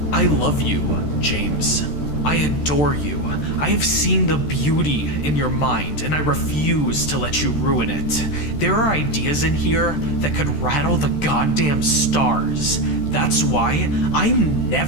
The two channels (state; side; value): late; right; 13 ms